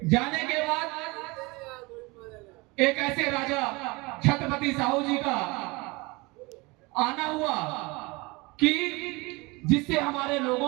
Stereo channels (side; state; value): left; quieter; 25.1 dB